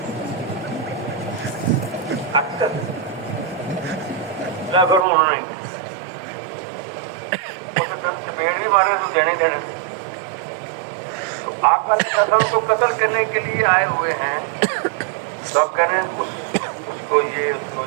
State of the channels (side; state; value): left; drops out; at 5.1 s